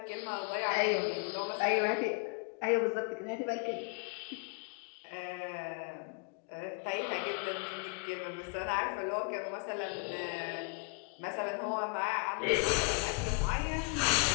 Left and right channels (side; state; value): right; quieter; 33.1 dB